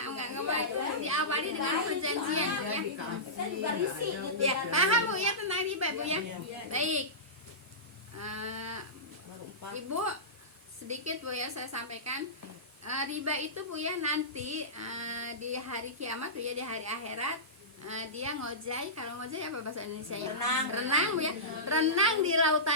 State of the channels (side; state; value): both; normal; correlation -0.18